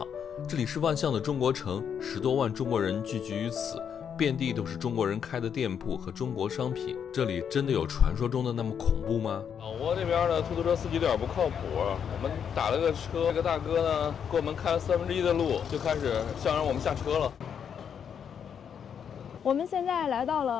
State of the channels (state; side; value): quieter; right; 7.8 dB